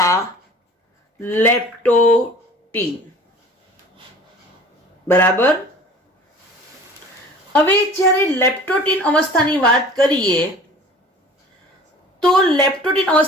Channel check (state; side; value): normal; both; correlation 0.45